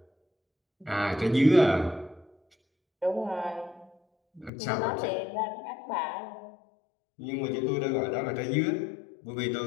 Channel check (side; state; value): right; drops out; at 4.5 s